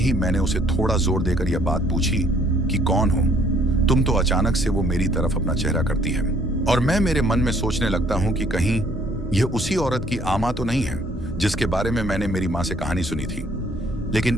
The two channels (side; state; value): both; normal; correlation 0.62